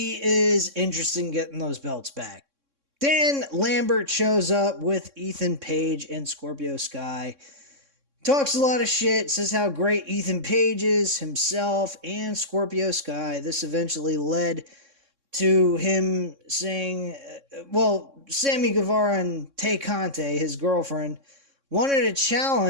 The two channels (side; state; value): left; late; 3.6 ms